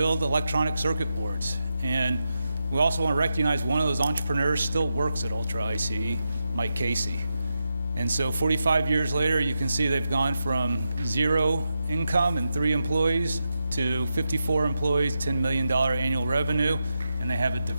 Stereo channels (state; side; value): inverted; both; correlation -0.87